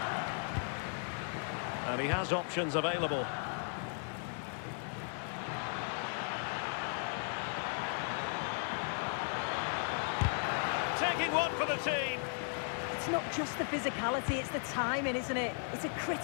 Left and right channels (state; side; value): silent; right; 54 dB below the other